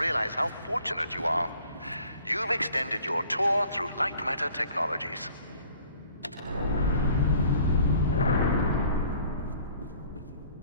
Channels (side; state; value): both; inverted; correlation -0.54